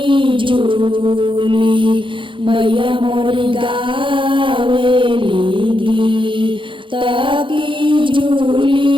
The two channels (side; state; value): left; late; 0.24 ms